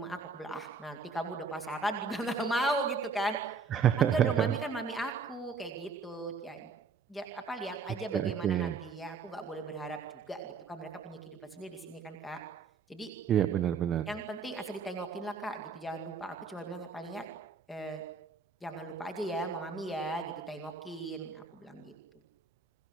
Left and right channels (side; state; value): left; quieter; 5.2 dB